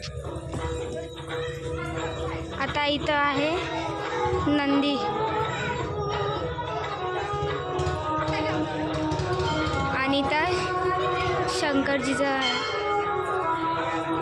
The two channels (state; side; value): identical; both; correlation 1.00